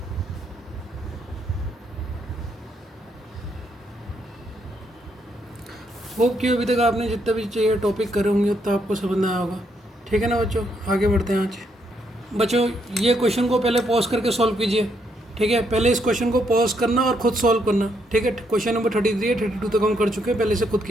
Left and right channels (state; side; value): normal; both; correlation 0.75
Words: होप कि अभी तक आपने जितने भी चाहिए टॉपिक करे होंगे उतना आपको समझ आया होगा। ठीक है ना बच्चों, आगे बढ़ते हैं। आज बच्चों ये क्वेश्चन को पहले पॉज करके सॉल्व कीजिए। ठीक है, पहले इस क्वेश्चन को पॉज करना और खुद सॉल्व करना। ठीक है, क्वेश्चन नंबर 33 है, 32 तक हम कर चुके हैं। पहले से खुद